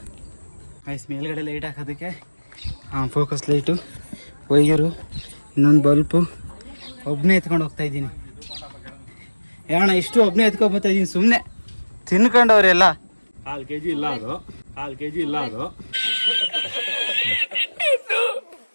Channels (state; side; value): inverted; both; correlation -1.00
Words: ಐಸ್ ಮೇಲ್ಗಡೆ ಲೈಟ್ ಹಾಕೋದಕ್ಕೆ ಫೋಕಸ್ ಲೈಟು, ವೈಯರು, ಇನ್ನೊಂದು ಬಲ್ಪು, ಒಬ್ಬನೇ ಎತ್ಕೊಂಡು ಹೋಗ್ತಾಯಿದ್ದೀನಿ. ಯಾಣ ಇಷ್ಟು ಒಬ್ಬನೇ ಎತ್ಕೊಂಡ್ಬರ್ತಾಯಿದ್ದೀನಿ ಸುಮ್ಮನೆ ತಿನ್ಕೊಂಡವ್ರೆಲ್ಲ. 1/2 kg ಇಲ್ಲ ಅದು, 1/2 kg ಇಲ್ಲ ಅದು.